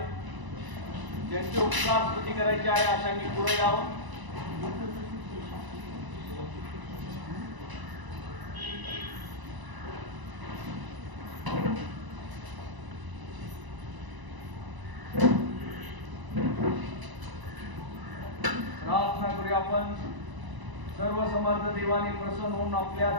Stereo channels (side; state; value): left; late; 1.0 ms